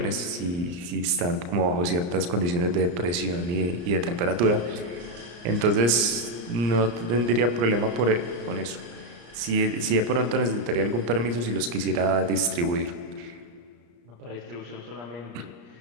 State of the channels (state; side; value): late; left; 34 ms